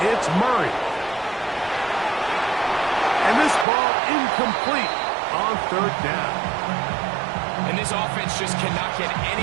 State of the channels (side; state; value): left; drops out; at 3.7 s